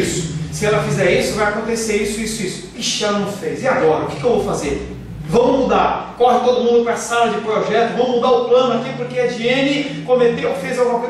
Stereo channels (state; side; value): identical; both; correlation 1.00